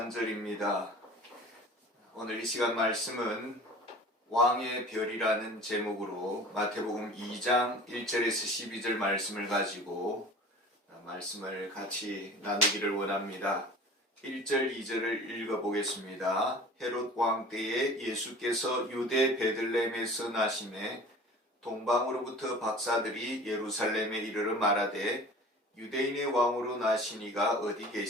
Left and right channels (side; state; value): both; normal; correlation 0.41